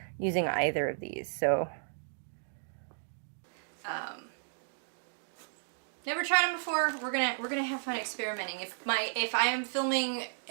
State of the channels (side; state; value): left; silent; digital silence